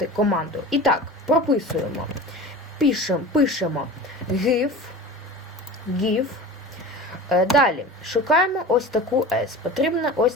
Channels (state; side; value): normal; both; correlation 0.35